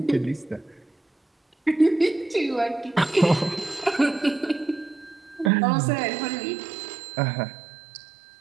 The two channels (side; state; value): left; drops out; at 5.5 s